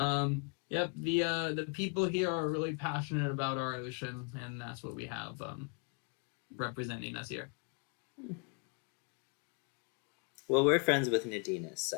Yep, the people here are really passionate about our ocean, and that's what we have representing us here. Well, we're friends with Nadina,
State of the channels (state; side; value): quieter; right; 35.4 dB